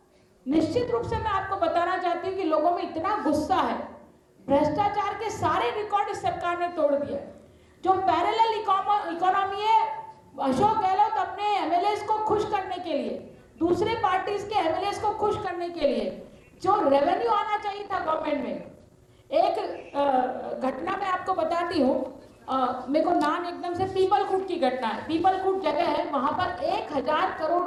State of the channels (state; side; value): identical; both; correlation 1.00